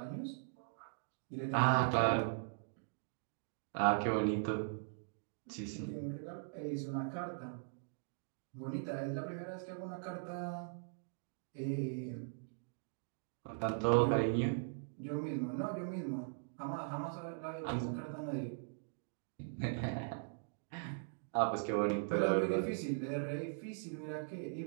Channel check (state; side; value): silent; left; digital silence